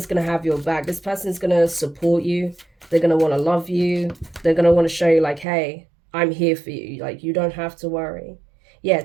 going to have your back. This person is going to support you. They're going to want to love you. They're going to want to show you, like, hey, I'm here for you. Like, you don't have to worry. Yeah,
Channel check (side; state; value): left; drops out; at 5.5 s